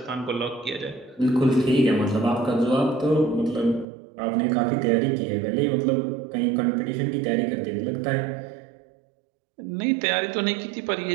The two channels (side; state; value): left; drops out; at 3.9 s